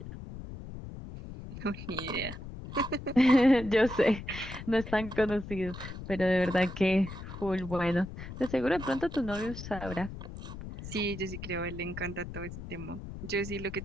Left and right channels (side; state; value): left; noise; rumble, 10 dB below the sound